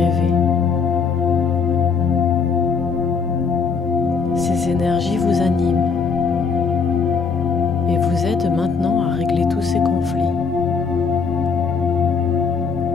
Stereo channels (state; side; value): quieter; right; 5.4 dB